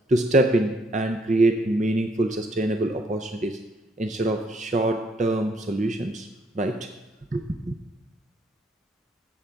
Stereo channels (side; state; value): both; normal; correlation 0.69